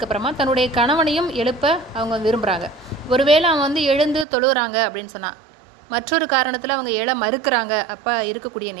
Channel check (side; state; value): left; drops out; at 4.2 s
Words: தன்னுடைய கணவனையும் எழுப்ப அவங்க விரும்புகிறாங்க. ஒருவேளை அவன் எழுந்து தொழுகிறாங்க அப்படின்னு சொன்னால், மற்றொரு காரணத்தில் அவங்க எழ மறுக்கிறாங்க. அப்போ இருக்கக்கூடிய